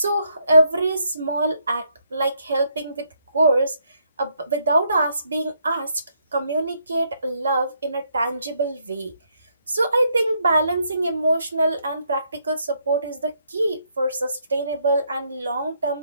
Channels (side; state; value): both; inverted; correlation -0.74